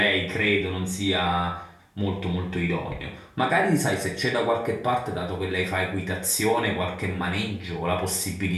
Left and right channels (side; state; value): both; identical; correlation 1.00